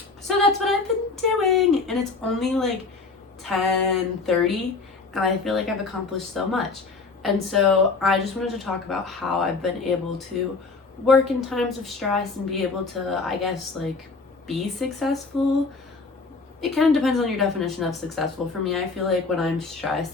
So that's what I've been doing, and it's only 10:30, and I feel I've accomplished so much. And so I just wanted to talk about how I've been able to work in times of stress and be able to, I guess, be successful. It kind of depends on your definition of successful. For me, I feel when I'm stressed,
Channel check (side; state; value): right; quieter; 4.2 dB